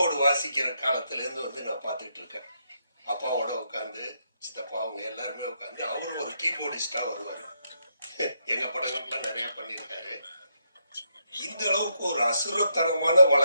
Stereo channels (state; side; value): inverted; both; correlation -0.78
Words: வாசிக்கிற காலத்துல இருந்து வந்து நான் பார்த்துட்டு இருக்கேன். அப்பாவோட உட்காந்து, சித்தப்பா அவங்க எல்லாருமே உட்காந்து, அவரும் ஒரு கீபோர்டிஸ்டா வருவாரு. எங்க படங்களுக்குலாம் நிறைய பண்ணியிருக்காரு. இந்த அளவுக்கு ஒரு அசுரத்தனமான